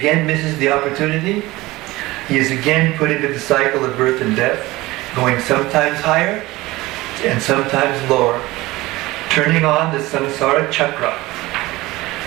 misses the opportunity, he is again put into the cycle of birth and death, going sometimes higher and sometimes lower, turning on the samsara chakra,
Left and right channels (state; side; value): quieter; left; 19.4 dB